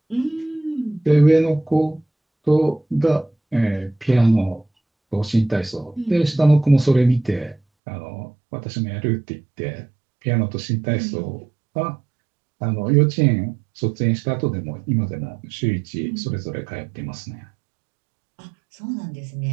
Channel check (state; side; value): drops out; left; at 7.6 s